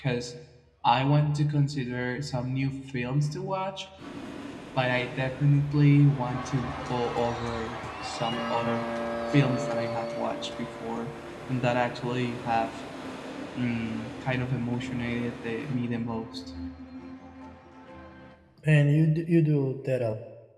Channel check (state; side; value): identical; both; correlation 1.00